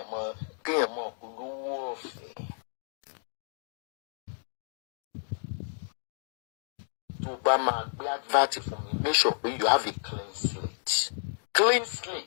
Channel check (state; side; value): silent; right; digital silence